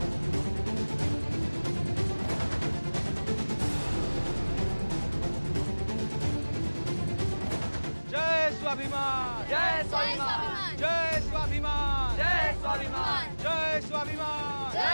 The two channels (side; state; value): both; inverted; correlation -1.00